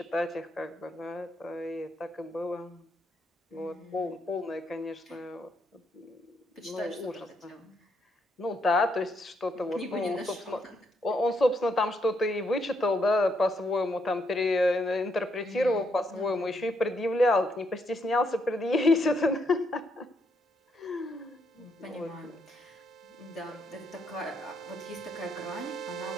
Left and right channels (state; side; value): normal; both; correlation 0.75